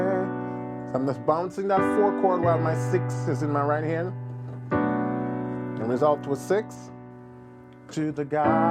So I'm just bouncing that 4 chord while my 6 is in my right hand, and resolve to a 6. To the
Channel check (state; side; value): identical; both; correlation 1.00